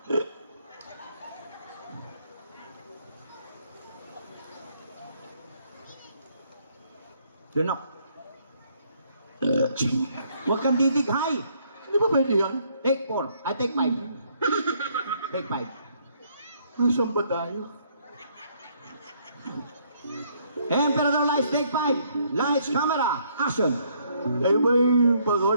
Lunok. Huwag kang didighay. Hindi ba pwede yan? Take 4. I take 5. Take 5. Nasaan ba tayo? Emperador Lights, take 5. Lights, camera, action. Kayo ba'y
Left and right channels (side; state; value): both; inverted; correlation -0.68